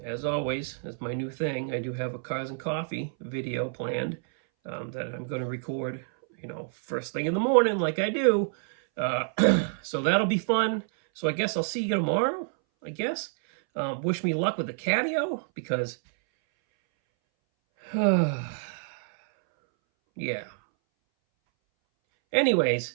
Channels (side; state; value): left; silent; 60 dB below the other